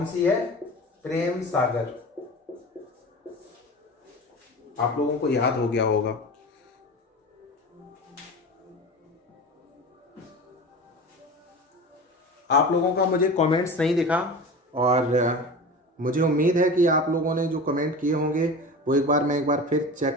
सी है? प्रेम सागर। आप लोगों को याद हो गया होगा। आप लोगों का मुझे कमेंट्स नहीं दिखा, और मुझे उम्मीद है कि आप लोगों ने जो कमेंट किए होंगे वो एक बार फिर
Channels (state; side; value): normal; both; correlation 0.32